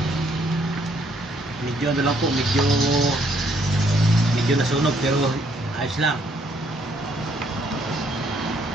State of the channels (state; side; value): normal; both; correlation 0.68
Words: Medyo ano lang po, medyo nasunog pero ayos lang.